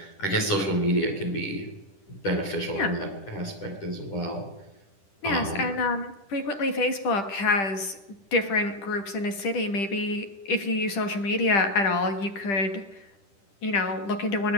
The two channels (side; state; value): right; late; 10 ms